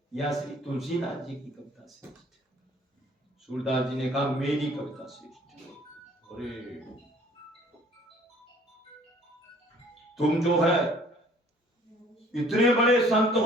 या श्री तुलसीदास जी की कविता श्रेष्ठ है? सूरदास जी ने कहा मेरी कविता श्रेष्ठ है। अरे तुम जो है इतने बड़े संत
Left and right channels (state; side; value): normal; both; correlation 0.54